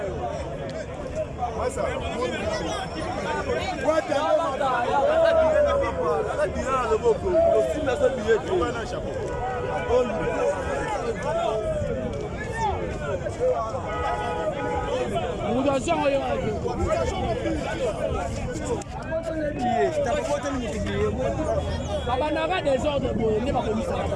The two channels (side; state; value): both; identical; correlation 1.00